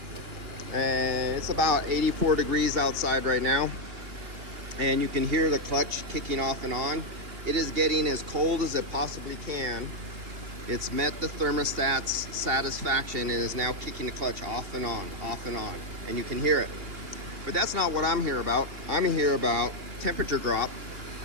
and it's about 84 degrees outside right now, and you can hear the clutch kicking off and on. It is getting as cold as it possibly can. It's met the thermostat's satisfaction and is now kicking the clutch off and on, and you can hear it. But that's not what I'm here about. I'm here about temperature drop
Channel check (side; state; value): left; late; 2.8 ms